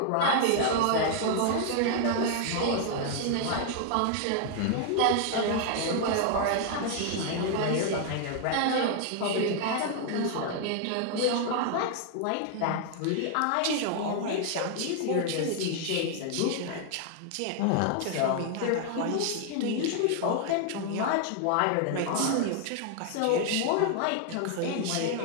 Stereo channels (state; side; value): different; both; correlation 0.00